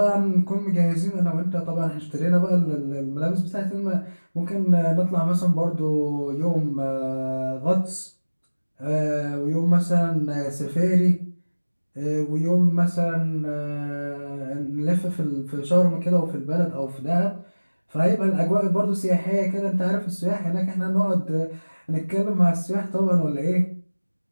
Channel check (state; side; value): inverted; both; correlation -1.00